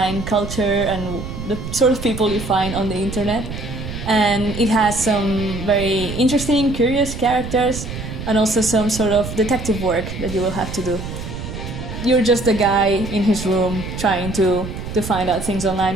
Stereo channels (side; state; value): right; noise; rumble, 8 dB below the sound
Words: culture and the sort of people you find on the internet. And it has some very interesting, curious characters and also some sort of detective work that you will have to do. You're just a guy in his room trying to find out things